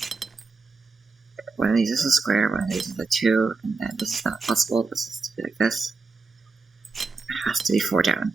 one of these is a square, one of these is a 2, and then this is not possible, this has to be like this. It has to be 4 down.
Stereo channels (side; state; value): left; quieter; 4.2 dB